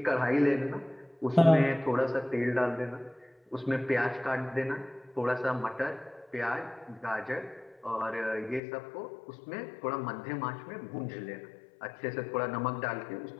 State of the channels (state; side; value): drops out; right; at 8.6 s